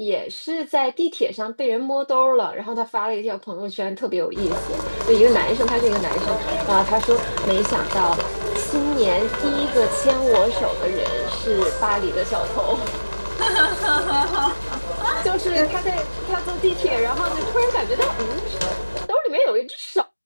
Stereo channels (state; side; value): inverted; both; correlation -1.00